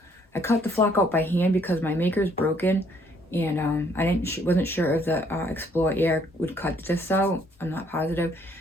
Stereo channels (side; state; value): both; normal; correlation 0.65